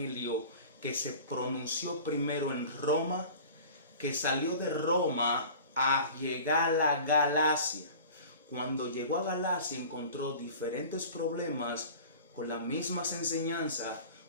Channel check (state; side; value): inverted; both; correlation -0.40